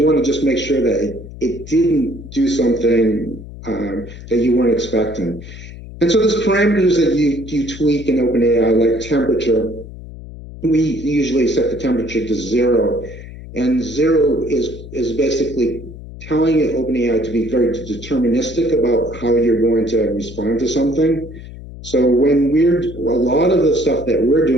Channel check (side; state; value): left; noise; hum, 14 dB below the sound